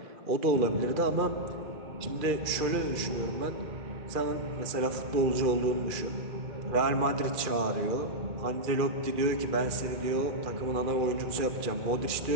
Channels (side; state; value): left; late; 2.4 ms